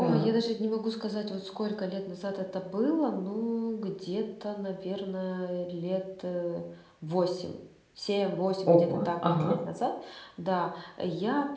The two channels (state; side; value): identical; both; correlation 1.00